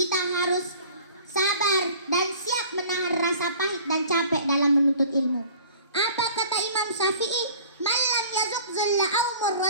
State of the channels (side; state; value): both; inverted; correlation -0.47